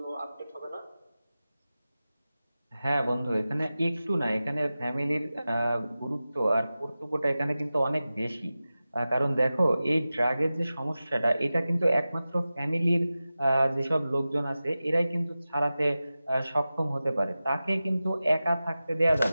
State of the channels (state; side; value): inverted; both; correlation -0.95